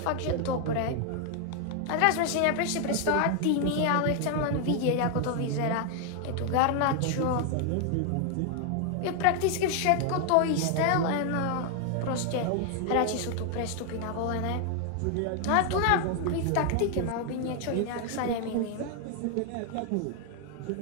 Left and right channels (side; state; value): both; different; correlation 0.00